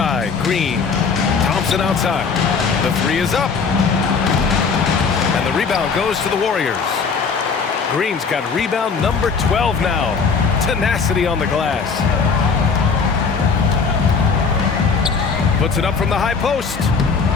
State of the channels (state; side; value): quieter; right; 5.3 dB